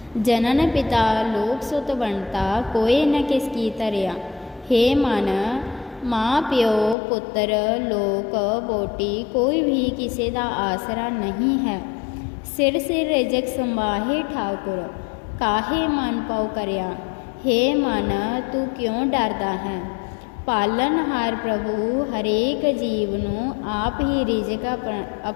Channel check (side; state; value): right; drops out; at 7.0 s